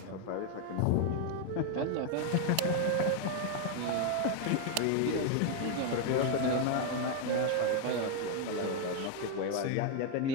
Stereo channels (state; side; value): different; both; correlation 0.00